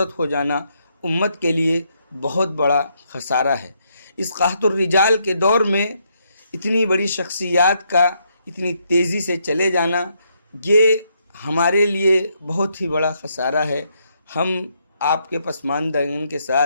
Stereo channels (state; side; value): inverted; both; correlation -0.76